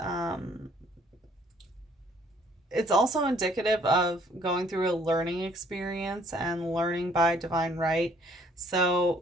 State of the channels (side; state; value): both; normal; correlation 0.61